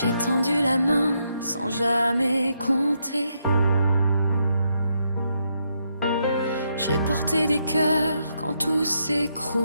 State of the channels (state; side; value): inverted; both; correlation -0.79